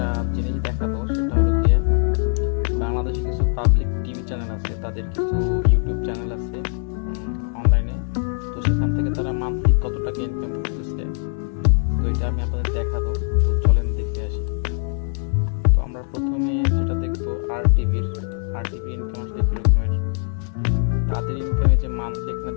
জিনিস দেখাবো। সেটা হলো গিয়ে বাংলাদেশে কিছু পাবলিক টিভি চ্যানেল আছে, তাদের কিছু ইউটিউব চ্যানেল আছে অনলাইনে। তো সেখান থেকে তারা মান্থলি কত টাকা ইনকাম করতেছে, তো এটা আমি আপনাদের দেখাবো। তো চলেন দেখে আসি। তো আমরা প্রথমে যেটা দেখবো আর টিভির ইনকাম আসলে কিরকমের। তাদের ইনকামে যে মান্থলি এখানে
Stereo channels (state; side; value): silent; right; 64 dB below the other